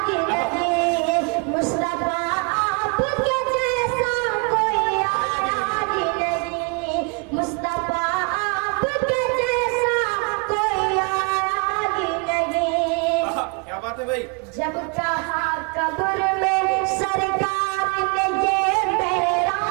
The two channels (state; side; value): quieter; left; 33.1 dB